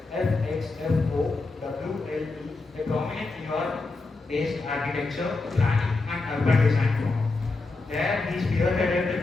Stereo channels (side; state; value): right; quieter; 3.5 dB